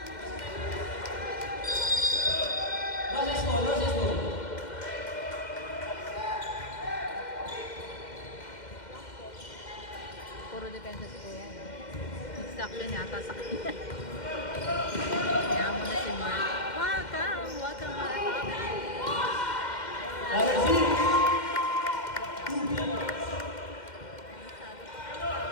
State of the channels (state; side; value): late; right; 2.1 ms